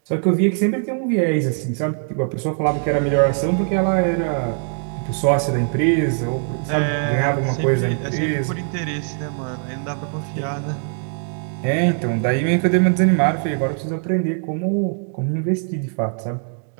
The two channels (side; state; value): left; silent; 56 dB below the other